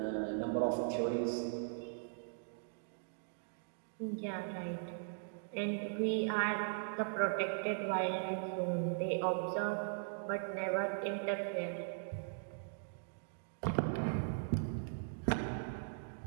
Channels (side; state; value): left; silent; digital silence